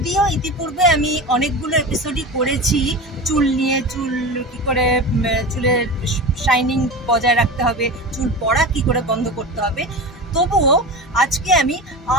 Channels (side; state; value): both; normal; correlation 0.29